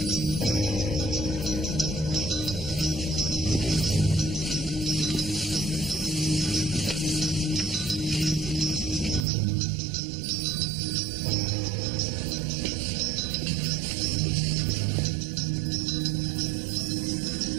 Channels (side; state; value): left; drops out; at 9.2 s